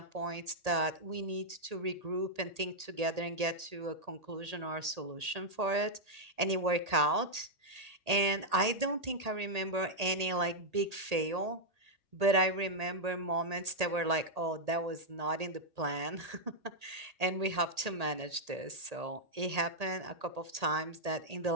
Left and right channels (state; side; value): late; left; 1.8 ms